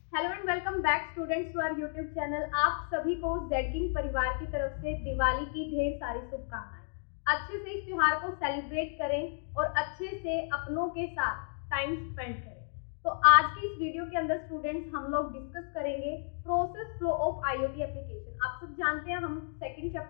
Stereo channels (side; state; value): right; silent; digital silence